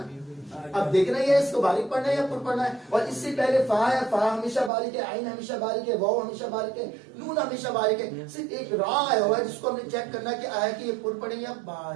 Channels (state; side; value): drops out; left; at 4.7 s